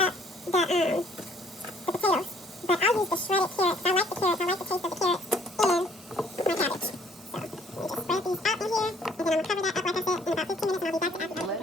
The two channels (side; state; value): both; normal; correlation 0.61